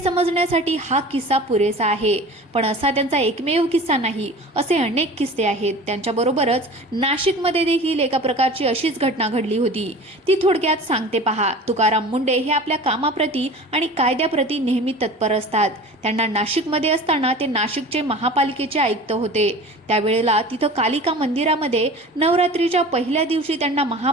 हा किस्सा पुरेसा आहे. पण असा त्यांचा एकमेव किस्सा नाही, असे अनेक किस्से आहेत. त्यांच्याबरोबरच नाशिकमध्ये देखील एका प्रकारची अशीच घटना घडली होती. ती थोडक्यात सांगते पहा. तुकाराम मुंडे हे आपल्या कामाप्रती आणि कायद्याप्रती नेहमी तत्पर असतात. त्यांना नाशिकमध्ये असताना ते नाशिकचे महापालिकेचे आयुक्त होते. त्यावेळेला तिथं कालिका मंदिरामध्ये नवरात्रीच्या पहिल्या दिवशी त्यांना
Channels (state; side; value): normal; both; correlation 0.39